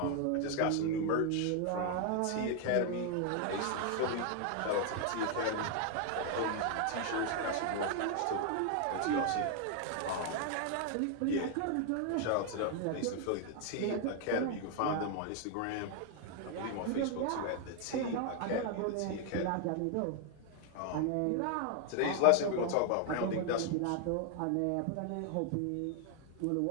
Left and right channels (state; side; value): different; both; correlation 0.00